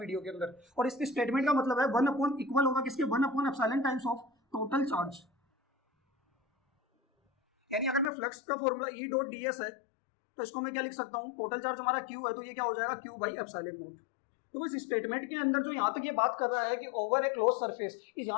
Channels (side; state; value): right; drops out; at 8.1 s